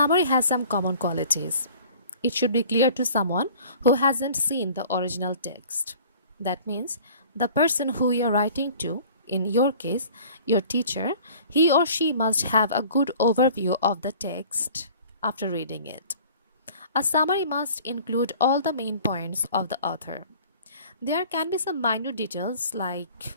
has some common qualities. It should be clear to someone who hasn't seen the original text. That means the person who you're writing to, in your case, your teacher, he or she must have a good overview of the text after reading it. A summary must include all the main points of the author. There can be some minor details like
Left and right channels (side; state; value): both; inverted; correlation -0.48